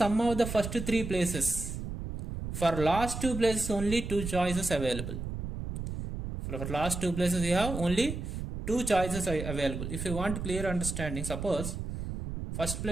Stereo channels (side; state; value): right; noise; rumble, 6 dB below the sound